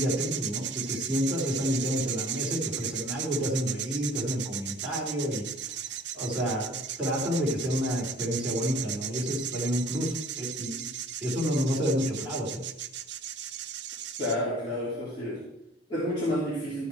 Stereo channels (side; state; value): both; normal; correlation 0.52